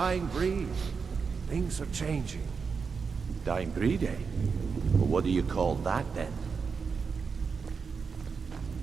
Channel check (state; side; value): quieter; left; 5.5 dB